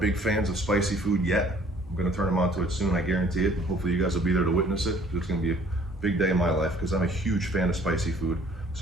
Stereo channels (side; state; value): both; normal; correlation 0.56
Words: big fans of spicy food yet. I'm gonna turn them on to it soon, I guarantee it. Hopefully you guys will be there to witness it. It's gonna be Big day in my life because I'm a huge fan of spicy food.